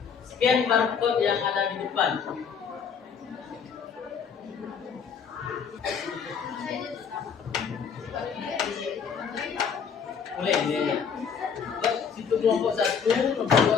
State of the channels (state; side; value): quieter; right; 6.7 dB